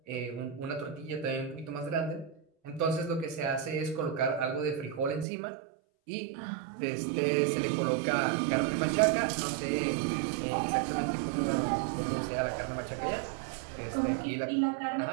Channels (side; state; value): left; drops out; at 5.2 s